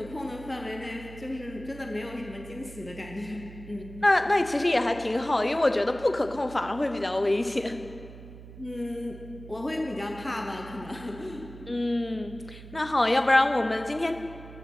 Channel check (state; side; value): noise; right; hum, 15 dB below the sound